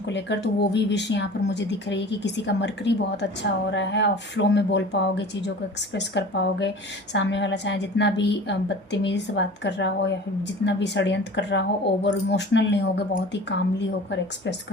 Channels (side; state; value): both; normal; correlation 0.41